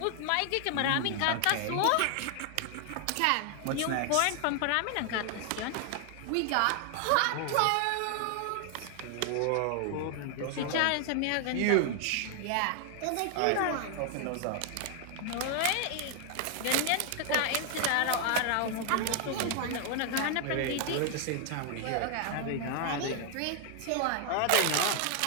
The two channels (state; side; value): different; both; correlation 0.00